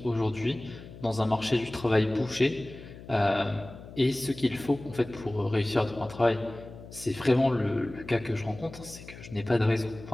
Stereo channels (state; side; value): noise; left; hum, 16 dB below the sound